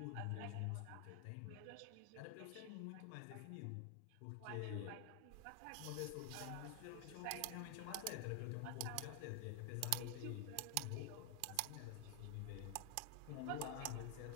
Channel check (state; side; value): different; both; correlation 0.00